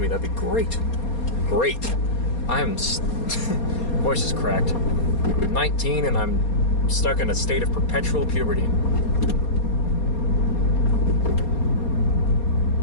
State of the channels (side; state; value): right; late; 4.2 ms